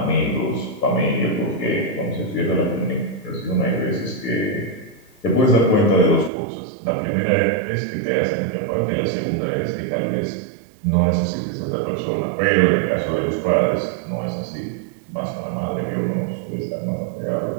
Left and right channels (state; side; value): drops out; left; at 6.3 s